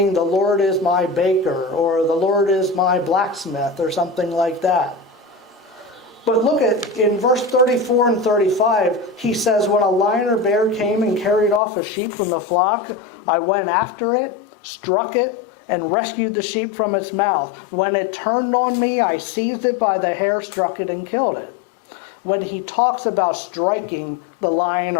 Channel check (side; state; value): right; drops out; at 11.6 s